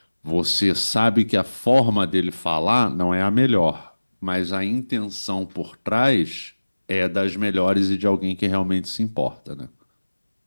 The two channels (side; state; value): both; inverted; correlation -1.00